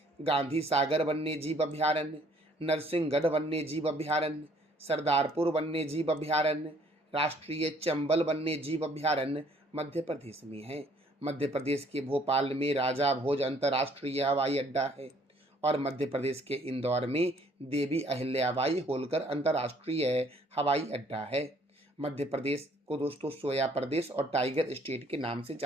गांधी सागर वन्य जीव अभ्यारण्य, नरसिंहगढ़ वन्य जीव अभ्यारण्य, सरदारपुर वन्य जीव अभ्यारण्य, राष्ट्रीय चंबल वन्य जीव अभ्यारण्य मध्य प्रदेश में है। मध्य प्रदेश के भोपाल में राजा भोज अंतर्राष्ट्रीय हवाई अड्डा है। और मध्य प्रदेश के इंदौर में देवी अहिल्याबाई होलकर अंतर्राष्ट्रीय हवाई अड्डा है। मध्य प्रदेश को दोस्तों सोया प्रदेश और टाइगर स्टेट के नाम से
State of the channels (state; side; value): normal; both; correlation 0.62